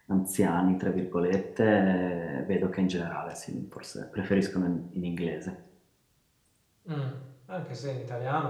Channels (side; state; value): both; identical; correlation 1.00